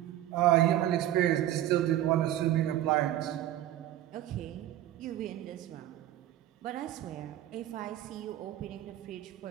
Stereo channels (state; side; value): quieter; left; 13.1 dB